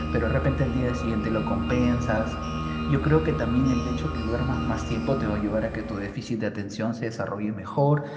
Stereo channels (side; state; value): both; identical; correlation 1.00